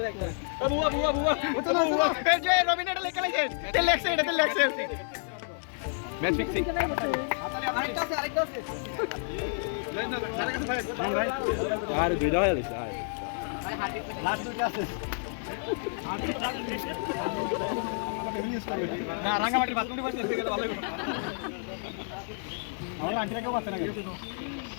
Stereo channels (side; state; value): right; silent; digital silence